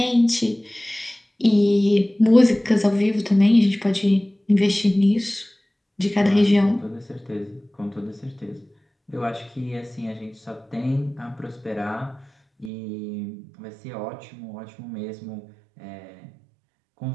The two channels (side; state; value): left; drops out; at 12.7 s